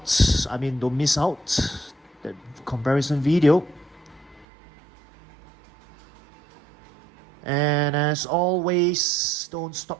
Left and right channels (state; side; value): drops out; left; at 4.5 s